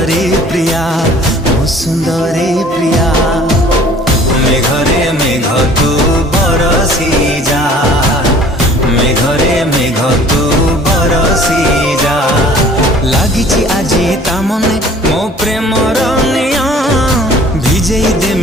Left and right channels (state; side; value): normal; both; correlation 0.51